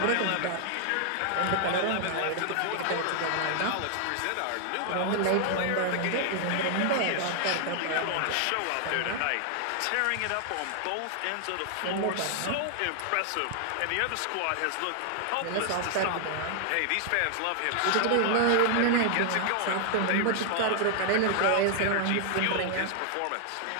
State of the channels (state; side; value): different; both; correlation 0.00